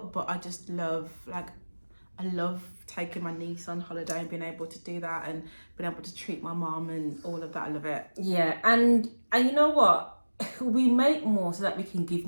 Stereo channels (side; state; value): both; inverted; correlation -1.00